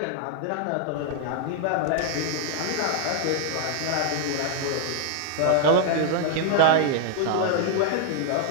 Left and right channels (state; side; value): different; both; correlation 0.00